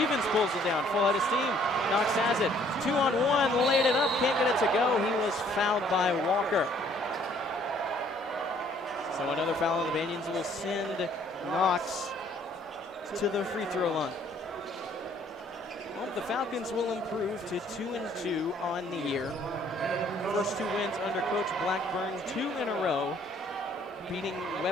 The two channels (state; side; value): normal; both; correlation 0.61